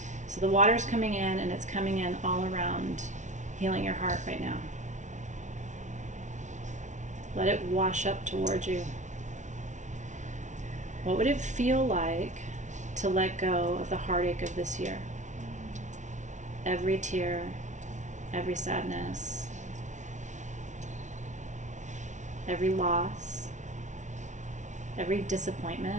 So the water's coming in, and it's coming in all around, healing your heart right now. Let it wash up towards you. What would it feel like to let go of the heartache of this year? Every tear, every sadness, every loss, every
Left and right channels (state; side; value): late; left; 0.36 ms